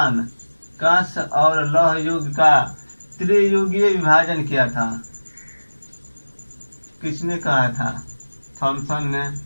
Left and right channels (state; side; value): inverted; both; correlation -1.00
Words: कांस्य और लौह युग का त्रियुगीय विभाजन किया था। किसने कहा था? थॉमसन ने,